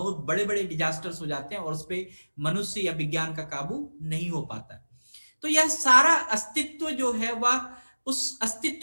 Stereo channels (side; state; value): both; inverted; correlation -1.00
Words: बड़े बड़े डिजास्टर्स हो जाते हैं और उस पर मनुष्य या विज्ञान का काबू नहीं हो पाता। तो यह सारा अस्तित्व जो है वह, उस